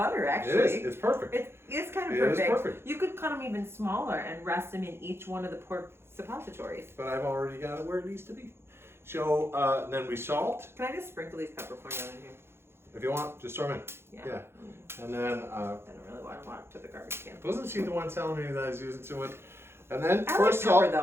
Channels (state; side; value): late; left; 0.12 ms